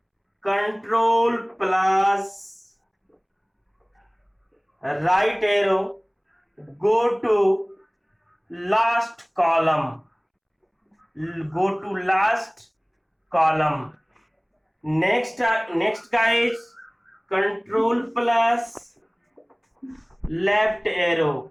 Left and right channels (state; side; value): identical; both; correlation 1.00